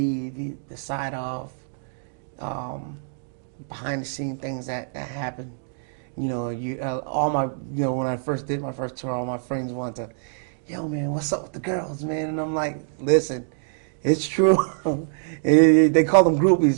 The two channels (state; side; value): silent; left; digital silence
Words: the side of behind the scene things that happen. You know, all my, you know, when I first did my first tour, all my friends wanted to, "Yo, man, what's up with the girls, man?" And I'm like, "Listen, it's true." They call them